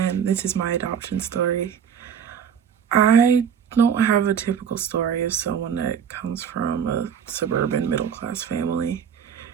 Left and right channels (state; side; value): quieter; left; 8.0 dB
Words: this is my adoption story. I don't have a typical story of someone that comes from a suburban middle-class family.